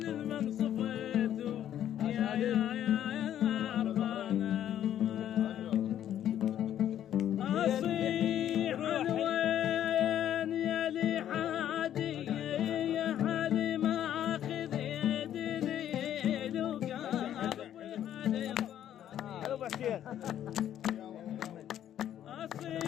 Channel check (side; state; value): right; quieter; 10.9 dB